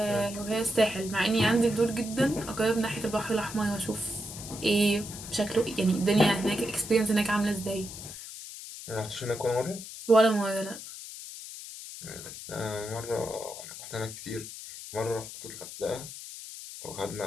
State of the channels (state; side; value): noise; left; hiss, 11 dB below the sound